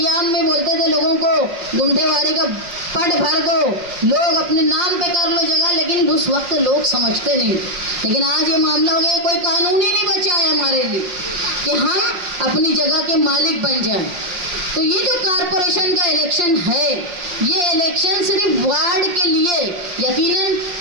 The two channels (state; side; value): late; left; 5.7 ms